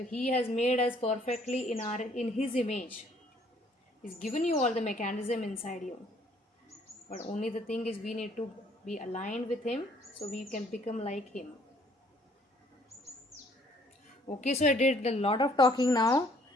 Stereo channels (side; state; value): both; normal; correlation 0.62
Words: He has made us perfectly in His image. He's given you all the mechanism inside you. But only the thing is, we need to be aligned with Him so we can become like Him. Okay, so I did a lot of talking now.